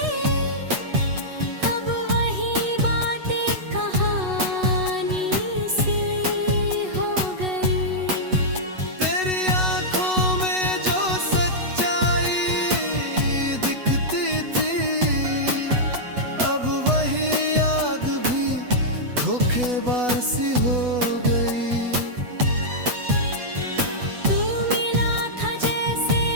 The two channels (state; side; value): late; left; 8.1 ms